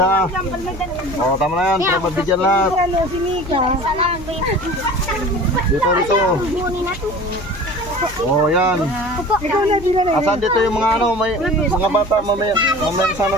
ha. Oh, tama na yan, para mabigyan lahat. Ano, si Mika? Dito, dito. Oh, yan. Ikaw na, di na na. Asan dito yung mga ano, may mga bata, mamaya sana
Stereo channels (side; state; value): left; noise; hum, 16 dB below the sound